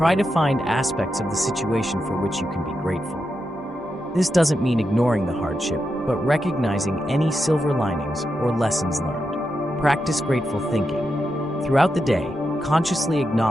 to find aspects of the situation for which you can be grateful. This doesn't mean ignoring the hardship, but recognizing any silver linings or lessons learned. Practice grateful thinking. Throughout the day, consciously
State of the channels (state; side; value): normal; both; correlation 0.86